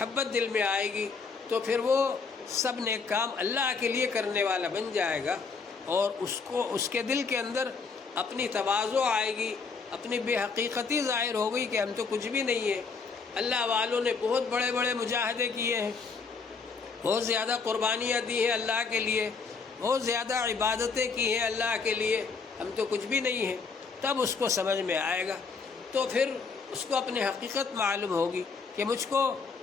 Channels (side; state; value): right; quieter; 5.0 dB